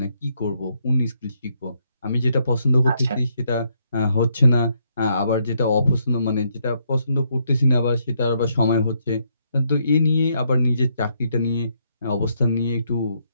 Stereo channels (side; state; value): both; inverted; correlation -0.74